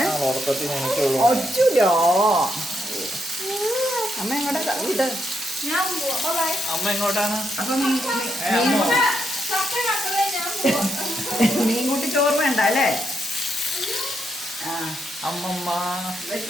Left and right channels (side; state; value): both; normal; correlation 0.80